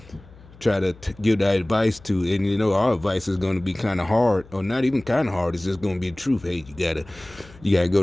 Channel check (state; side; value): noise; left; hum, 23 dB below the sound